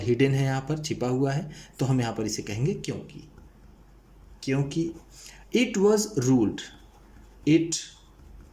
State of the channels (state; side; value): identical; both; correlation 1.00